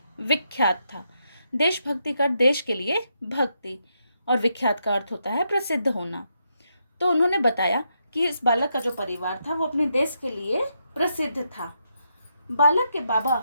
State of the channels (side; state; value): both; inverted; correlation -0.81